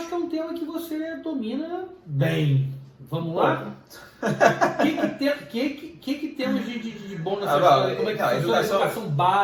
que é um tema que você domina bem. Vamos lá? O que temos de bom nessa história? Como é que funciona a educação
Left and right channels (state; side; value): identical; both; correlation 1.00